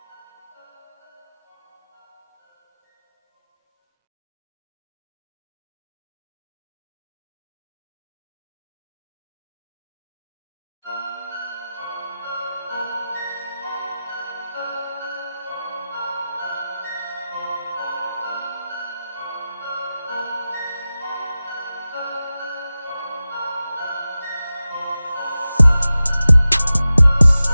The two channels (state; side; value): inverted; both; correlation -0.95